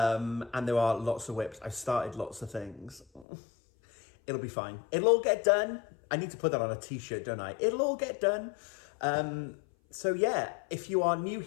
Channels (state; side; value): drops out; right; at 3.2 s